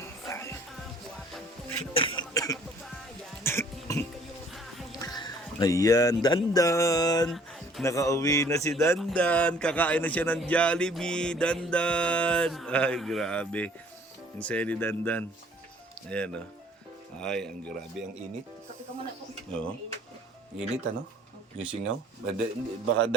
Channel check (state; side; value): normal; both; correlation 0.56